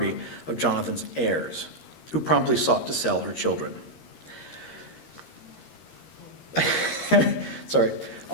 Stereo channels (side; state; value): right; late; 13 ms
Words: of Jonathan's heirs, who promptly sought to sell her children.